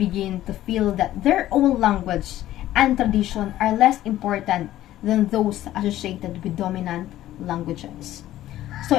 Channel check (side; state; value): right; quieter; 13.9 dB